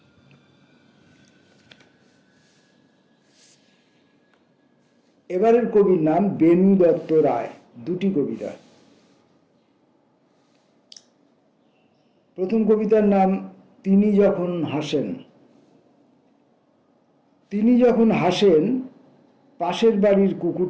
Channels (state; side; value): identical; both; correlation 1.00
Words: এবারের কবির নাম বেনু দত্ত রায়, দুটি কবিতা। প্রথম কবিতার নাম তিনি যখন হাসেন। তিনি যখন হাসেন, পাশের বাড়ির